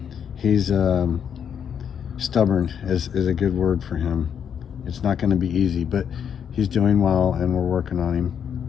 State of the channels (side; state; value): right; quieter; 8.0 dB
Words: stubborn is a good word for him. It's not going to be easy, but he's doing well, and we're working on him.